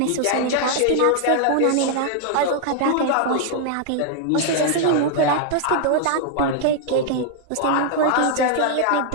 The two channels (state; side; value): different; both; correlation 0.00